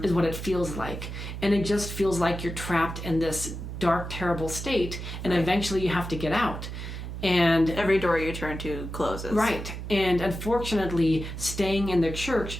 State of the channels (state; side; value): noise; right; hum, 7 dB below the sound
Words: is what it feels like. And it just feels like you're trapped in this dark, terrible state, and eventually you have to get out. And Every door you turn to closes. right. And unfortunately, staying in the